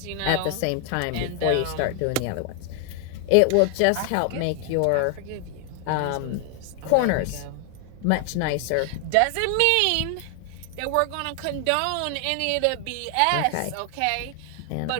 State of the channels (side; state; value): both; different; correlation 0.00